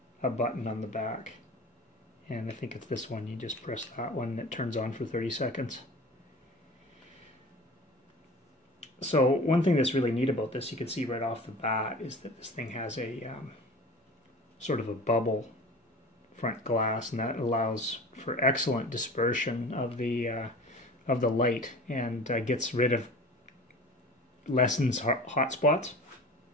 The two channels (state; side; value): normal; both; correlation 0.38